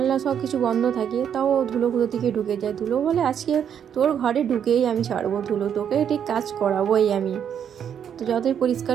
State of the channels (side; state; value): left; quieter; 8.6 dB